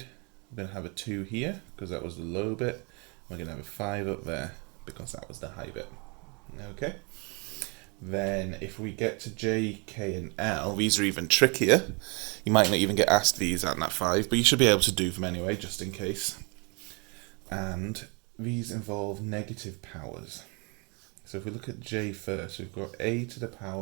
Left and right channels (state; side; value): quieter; left; 32.2 dB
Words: we're going to have a 2 here because that was the low bit. We're going to have a 5 up there because that was the high bit. Okay. Then if we get to J, K and L, these are even trickier. You might not even get asked these at Nat 5, but you should be able to do them anyway, just in case. And these involve negative powers. So if we look at J first, we've got a to the